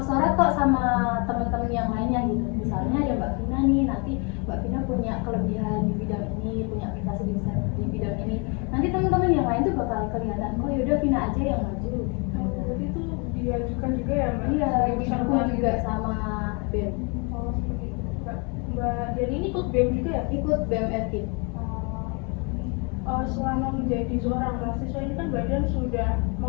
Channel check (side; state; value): right; quieter; 32.8 dB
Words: kok sama teman-teman yang lainnya gitu. Misalnya ada Mbak Vina nih, nanti Mbak Vina punya kelebihan di bidang ini, punya prestasi di bidang ini. Nanti teman-teman yang lain tuh bakal kelihatan, oh yaudah Vina aja yang maju. Berarti itu diajukan juga ya Mbak? Iya, Sebagai didukung peserta juga gitu. sama BEM. Oh seperti itu. Mbak Dian ini ikut BEM juga ya? Ikut BEM FKIP. Selama menjadi seorang mahasiswa ini kan Mbak Dian sudah